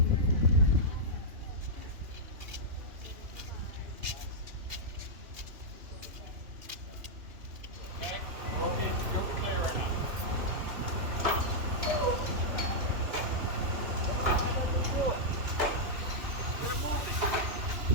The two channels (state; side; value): late; left; 2.9 ms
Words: Okay, you'll be clear right now.